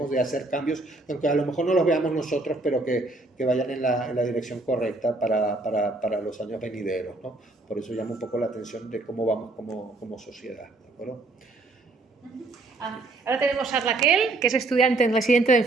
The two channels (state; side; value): quieter; left; 3.0 dB